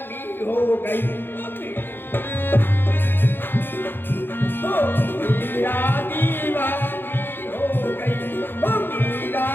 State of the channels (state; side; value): late; right; 0.10 ms